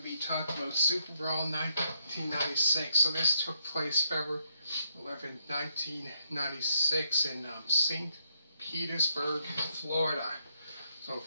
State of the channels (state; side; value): inverted; both; correlation -0.78